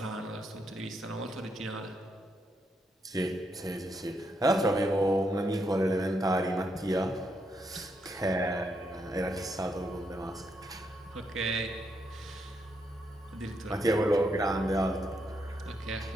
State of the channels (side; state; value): both; normal; correlation 0.79